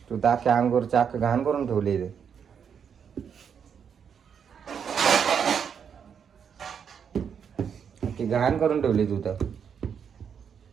तू ताके अंगूर चाक घाण करून ठेवली रे. की घाण करून ठेवली तू तर.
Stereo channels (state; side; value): quieter; left; 7.4 dB